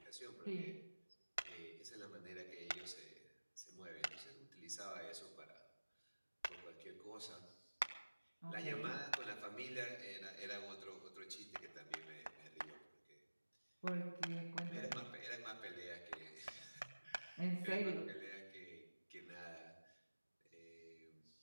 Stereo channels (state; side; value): inverted; both; correlation -1.00